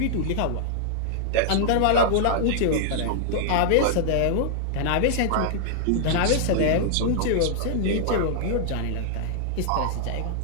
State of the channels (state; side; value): different; both; correlation -0.01